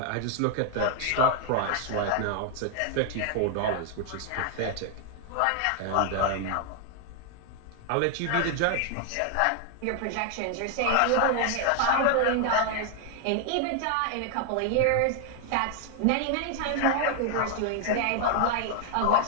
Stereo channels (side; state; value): both; different; correlation 0.00